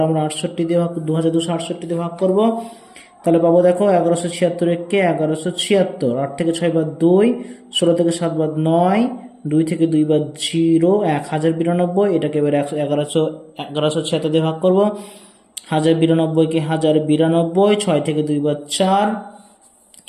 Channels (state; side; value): identical; both; correlation 1.00